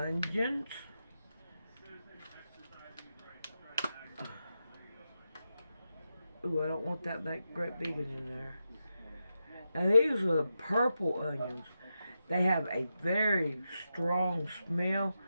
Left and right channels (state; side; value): inverted; both; correlation -0.88